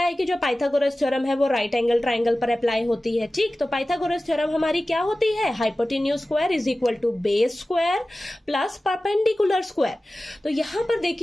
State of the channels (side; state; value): both; normal; correlation 0.96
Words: है कि जो पाइथागोरस थ्योरम है वो राइट एंगल ट्राइंगल पर अप्लाई होती है। ठीक, तो पाइथागोरस थ्योरम हमारी क्या होती है? Hypotenuse square is equal to base square plus perpendicular square. तो यहां पर